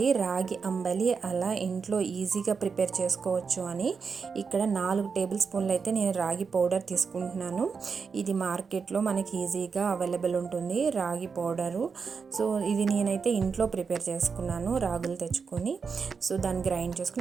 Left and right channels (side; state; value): left; quieter; 5.5 dB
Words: రాగి అంబలి అలా ఇంట్లో ఈజీగా ప్రిపేర్ చేసుకోవచ్చు అని. ఇక్కడ 4 టేబుల్ స్పూన్లు అయితే నేను రాగి పౌడర్ తీసుకుంటున్నాను. ఇది మార్కెట్లో మనకి ఈజీగా అవైలబుల్ ఉంటుంది రాగి పౌడరు. సో ఇది నేనైతే ఇంట్లో ప్రిపేర్ చేసుకున్నాను, రాగులు తెచ్చుకొని. సో దాన్ని గ్రైండ్